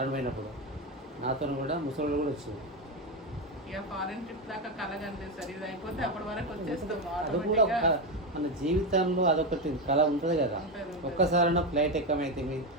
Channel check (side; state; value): both; normal; correlation 0.11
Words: పోయినప్పుడు నాతో కూడా ముసలి కూడా వచ్చారు. ఫారెన్ ట్రిప్ దాకా కలగండి సార్, ఇది అయిపోతే అప్పటి వరకు వచ్చేస్తాం. అది కూడా మన జీవితంలో అదొకటి కళ ఉంటుంది కదా. ఒక్కసారైనా ఫ్లైట్ ఎక్కమైతే